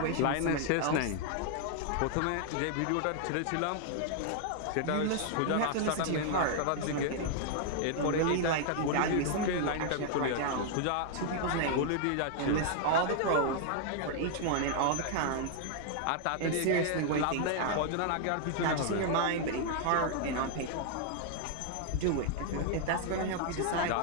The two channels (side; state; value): both; different; correlation 0.00